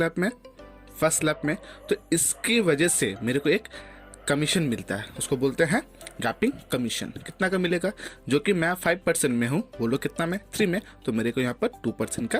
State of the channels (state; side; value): identical; both; correlation 1.00